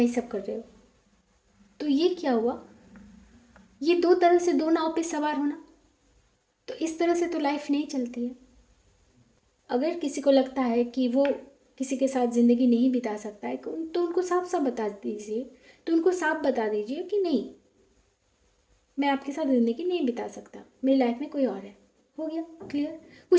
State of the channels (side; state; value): both; identical; correlation 1.00